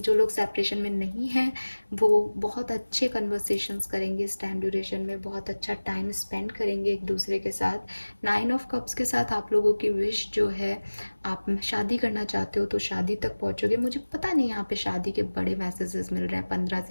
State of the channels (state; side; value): inverted; both; correlation -1.00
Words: लोग सेपरेशन में नहीं हैं वो बहुत अच्छे कन्वर्सेशंस करेंगे इस टाइम ड्यूरेशन में, बहुत अच्छा टाइम स्पेंड करेंगे एक दूसरे के साथ। 9 ऑफ कप्स के साथ आप लोगों की विश जो है, आप शादी करना चाहते हो तो शादी तक पहुंचोगे। मुझे पता नहीं यहाँ पे शादी के बड़े मैसेजेस मिल रहे हैं 15